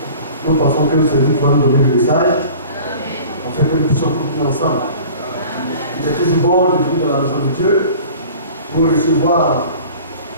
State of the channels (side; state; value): both; inverted; correlation -0.44